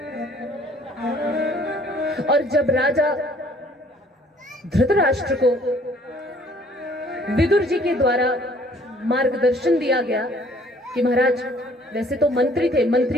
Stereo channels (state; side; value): normal; both; correlation 0.58